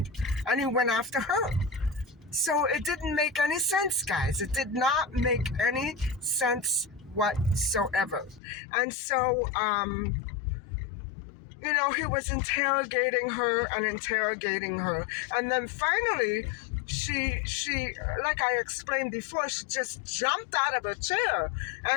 and he went after her. So it didn't make any sense, guys. It did not make any sense whatsoever. And so, he was interrogating her. And then finally, she, like I explained before, she just jumped out of her chair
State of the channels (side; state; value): right; drops out; at 8.4 s